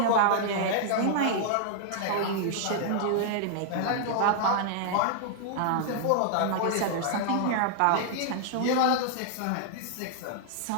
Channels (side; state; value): both; different; correlation -0.01